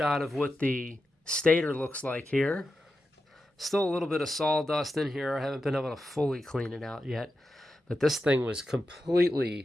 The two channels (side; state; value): both; normal; correlation 0.90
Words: of what the stator looks like here. Still a little bit of sawdust in here. I haven't been able to fully clean it out yet. But this thing was